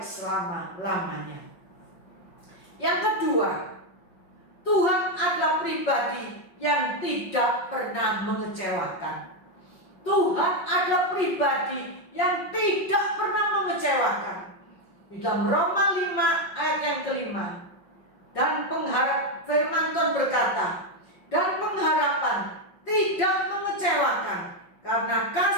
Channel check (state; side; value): late; right; 5.5 ms